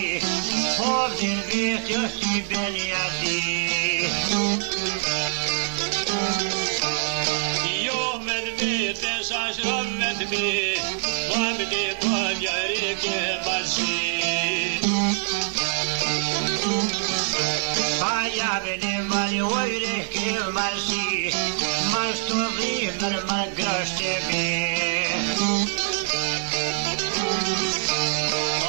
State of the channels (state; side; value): silent; left; 62 dB below the other